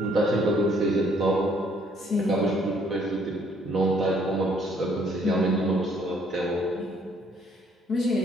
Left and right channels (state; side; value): normal; both; correlation 0.64